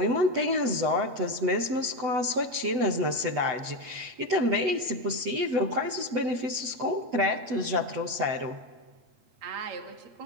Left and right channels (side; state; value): left; late; 8.3 ms